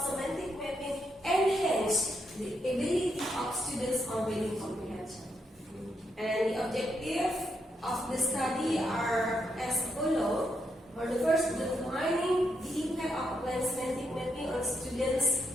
semantic mapping enhance the ability of students on reading comprehension? And the objective of the study are as follows. For the first, defining the impact of applying semantic mapping on students'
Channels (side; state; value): both; normal; correlation 0.80